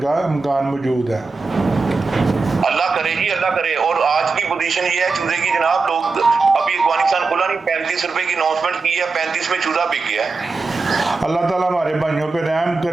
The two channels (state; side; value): quieter; left; 4.1 dB